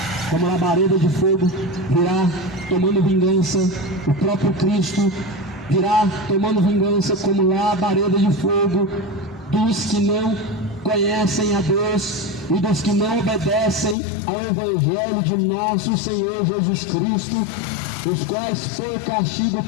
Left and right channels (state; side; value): drops out; right; at 14.0 s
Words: Como labareda de fogo virá tomando vingança, o próprio Cristo virá tomando vingança como labareda de fogo dos que não conhecem a Deus, e dos que não obedecem ao Evangelho de nosso Senhor Jesus Cristo, os quais por castigo